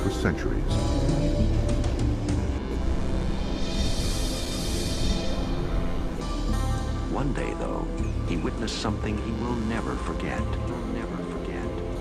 centuries. One day, though, he witnessed something he will never forget. Never forget.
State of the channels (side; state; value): both; identical; correlation 1.00